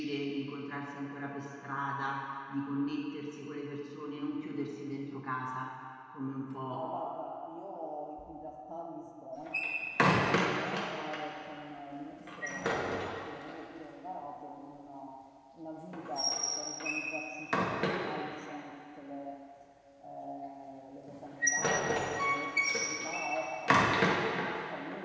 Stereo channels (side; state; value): both; identical; correlation 1.00